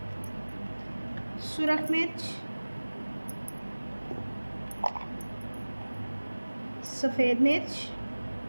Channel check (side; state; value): both; inverted; correlation -1.00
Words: सुरख मिर्च, सफ़ेद मिर्च,